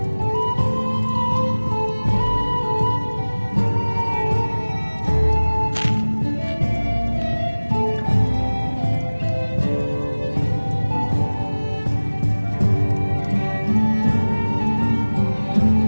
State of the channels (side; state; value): both; inverted; correlation -1.00